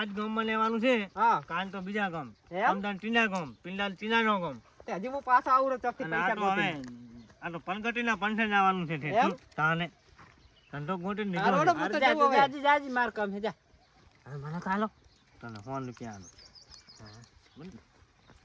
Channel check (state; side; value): identical; both; correlation 1.00